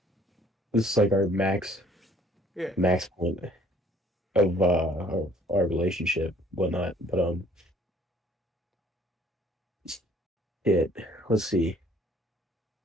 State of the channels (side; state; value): both; normal; correlation 0.59